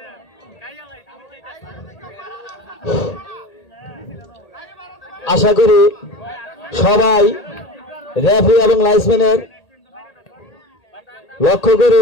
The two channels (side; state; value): right; late; 1.8 ms